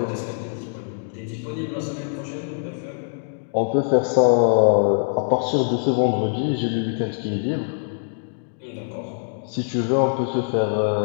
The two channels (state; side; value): silent; right; digital silence